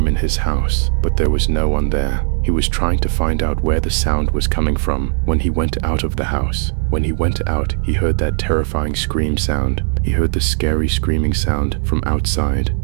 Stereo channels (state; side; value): silent; left; 68 dB below the other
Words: in his house, but there was no one there. He was trying to find out where the sound was coming from when he went out of the house. When he went out, he heard that terrifying scream sound. He heard the scary screaming sound from outside.